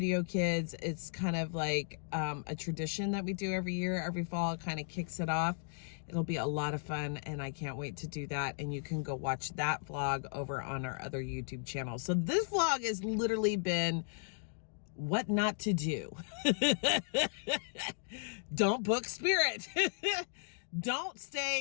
kids. It's kind of like a tradition that we do every year, every fall. It kind of kicks it off. It'll be a lot of fun, and I can't wait to do that. And you can go watch that vlog over on our other YouTube channel. So this vlog has literally been what not to do. Don't book Spirit. Don't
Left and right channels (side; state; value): right; silent; digital silence